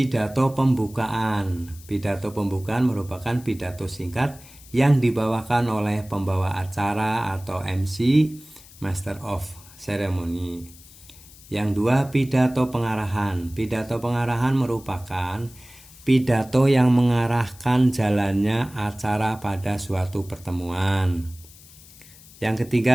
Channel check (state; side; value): noise; left; hiss, 22 dB below the sound